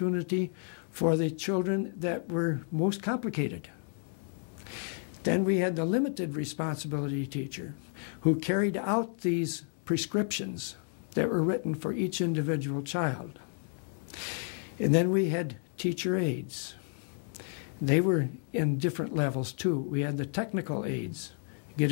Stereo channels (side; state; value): right; silent; 56 dB below the other